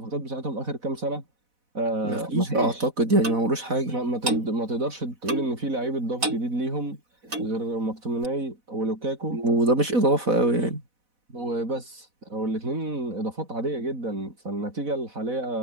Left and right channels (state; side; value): late; left; 4.1 ms